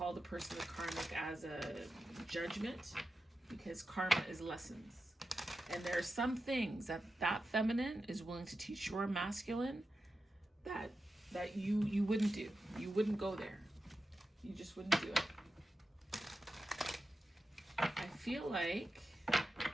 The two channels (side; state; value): both; normal; correlation 0.91